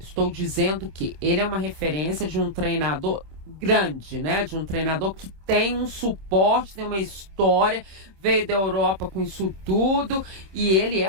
dizendo que ele é uma referência de um treinador grande, né? De um treinador que tem um suporte, tem uma história, veio da Europa com isso tudo, e ele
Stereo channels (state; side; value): late; left; 26 ms